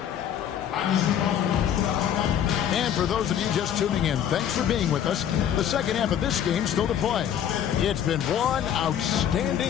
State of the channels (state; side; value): quieter; right; 9.6 dB